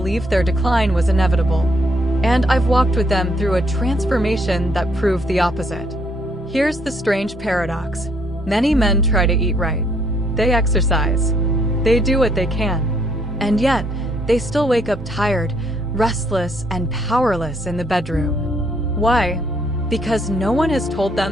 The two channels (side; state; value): both; normal; correlation 0.69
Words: their decline was inevitable, and I've walked with them through a transformation that proved the opposite. Here's the strange paradox. Many men try to eat right. They exercise. They do what they can. And yet, they still wake up tired, restless, and powerless in the bedroom. Why? Because no one has told